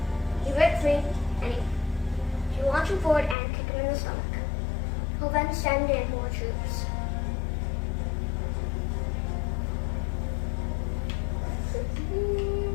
You break free, and you launch him forward and kick him in the stomach. He'll then send in more troops.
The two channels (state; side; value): drops out; right; at 3.4 s